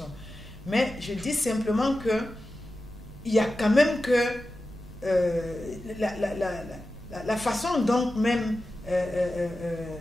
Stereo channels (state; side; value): noise; right; rumble, 16 dB below the sound